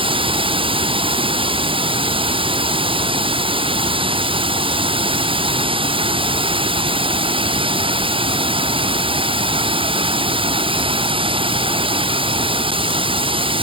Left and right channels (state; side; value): late; left; 0.25 ms